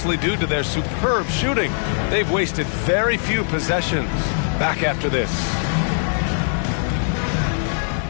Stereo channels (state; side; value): silent; right; digital silence